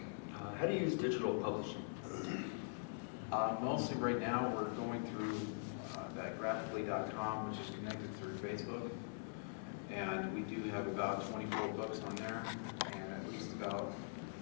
How do you use digital publishing? mostly right now, we're going through that graphically.com, which is connected through Facebook. And we do have about 24 books on there, and at least about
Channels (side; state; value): right; silent; digital silence